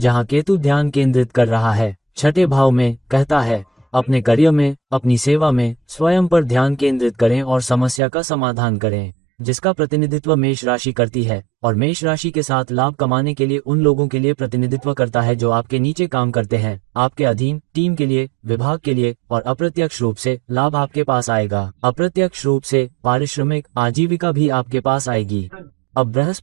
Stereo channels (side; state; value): left; drops out; at 8.0 s